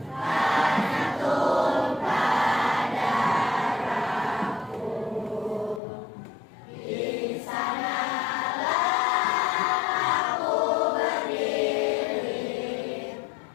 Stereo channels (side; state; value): right; drops out; at 5.8 s